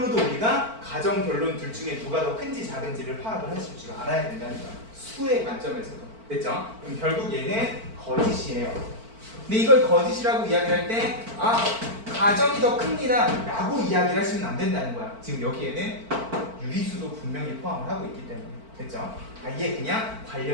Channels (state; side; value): late; left; 4.5 ms